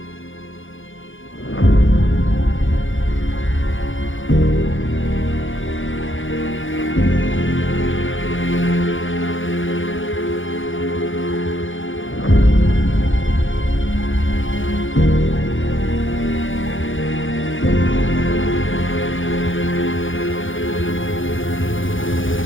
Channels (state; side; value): late; right; 0.57 ms